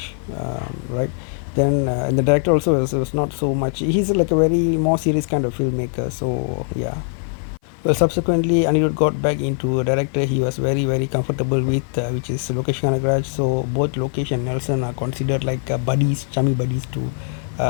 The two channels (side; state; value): right; silent; 59 dB below the other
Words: right? Then and the director also was not so much. He's like a very more serious kind of filmmaker. So yeah. Well, subsequently, Anirudh got back into a director he was very comfortable with, which is Lokesh Kanagaraj. So both Lokesh and Nelson are considered like buddies, chummy buddies to